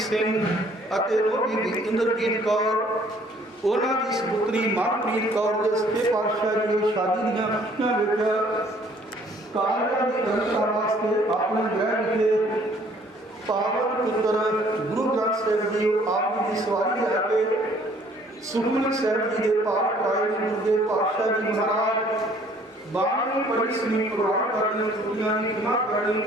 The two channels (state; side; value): normal; both; correlation 0.59